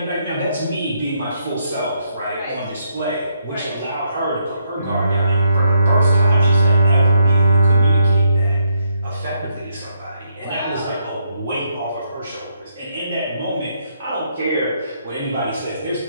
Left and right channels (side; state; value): both; inverted; correlation -0.75